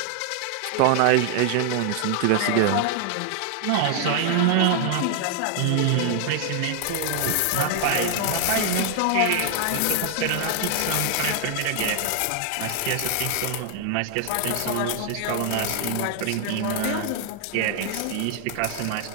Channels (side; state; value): both; different; correlation 0.00